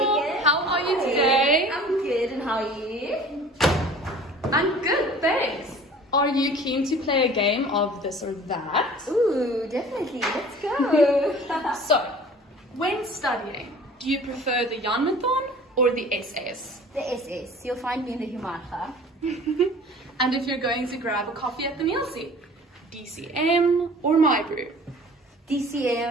How are you today? I'm good, and how are you? I'm good, thanks. Are you keen to play a game of this or that? Ooh, definitely. Let's go. So, when studying, do you prefer the Janmathon or the SS? The SS. You'll find me in the Humarcha. And if you're going to grab a coffee at the meal seat, DCM or My Brew?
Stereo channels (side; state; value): both; normal; correlation 0.46